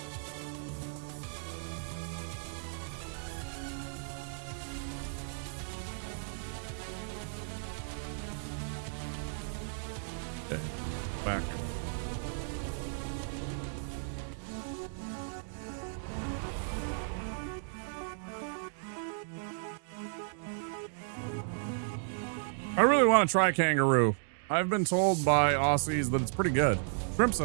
Okay, back. I really want to try Kangaroo. I've been told by Aussies that it's pretty good. Shrimp's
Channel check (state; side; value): silent; left; digital silence